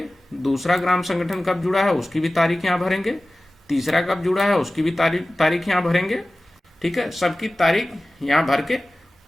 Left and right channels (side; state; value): both; normal; correlation 0.97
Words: दूसरा ग्राम संगठन कब जुड़ा है उसकी भी तारीख यहाँ भरेंगे, तीसरा कब जुड़ा है उसकी भी तारीख यहाँ भरेंगे। ठीक है, सबकी तारीख यहाँ भर के